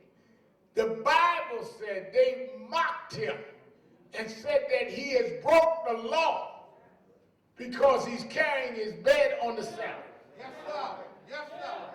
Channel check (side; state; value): both; identical; correlation 1.00